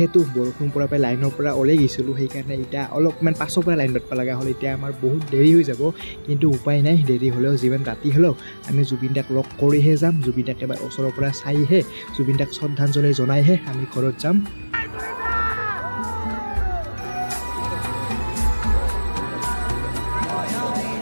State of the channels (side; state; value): both; inverted; correlation -1.00